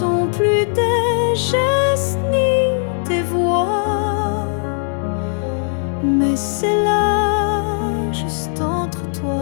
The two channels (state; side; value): silent; right; digital silence